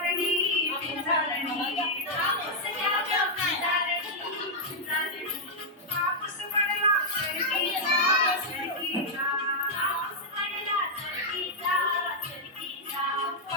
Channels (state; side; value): normal; both; correlation -0.04